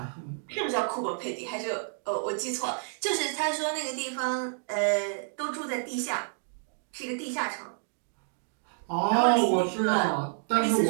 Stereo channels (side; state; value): left; silent; digital silence